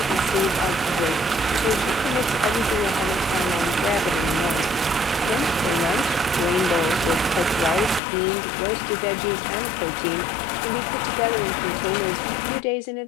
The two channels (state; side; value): drops out; right; at 8.0 s